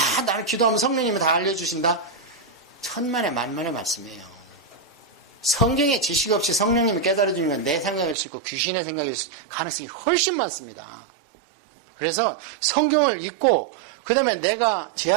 나는 기도하면 성령님이 다 알려주신다? 천만의 만만의 말씀이에요. 성경에 지식 없이 성령님이 깨달아주는 건 내 생각일 수 있고 귀신의 생각일 가능성이 훨씬 많습니다. 그래서 성경을 읽고 그 다음에 내가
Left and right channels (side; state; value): left; drops out; at 8.2 s